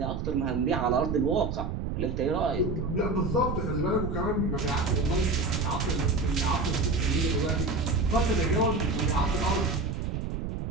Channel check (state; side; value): noise; right; rumble, 3 dB below the sound